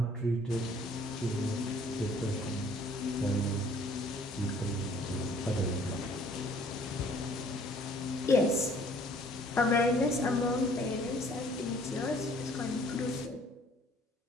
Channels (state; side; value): normal; both; correlation 0.57